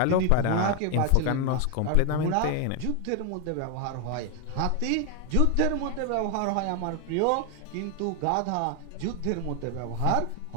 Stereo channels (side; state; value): both; different; correlation 0.00